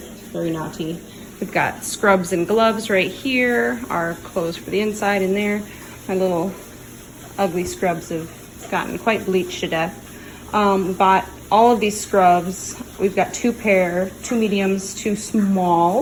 very naughty. We've got scrubs and gloves right here, our clothes for the inside in there. My little ugly scrubs have gotten quite bleached to death. We bought all of these scrubs. We've got 2 pair, 2 mediums, 2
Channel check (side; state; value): both; identical; correlation 1.00